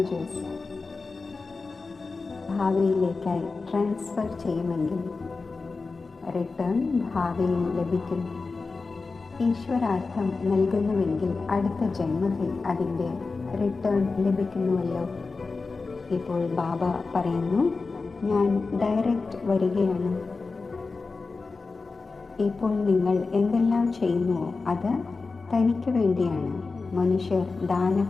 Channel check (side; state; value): right; quieter; 4.1 dB